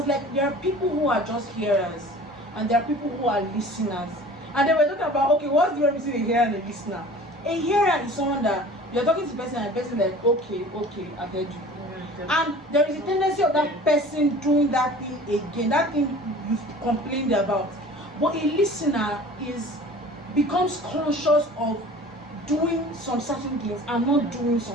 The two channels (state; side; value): normal; both; correlation 0.43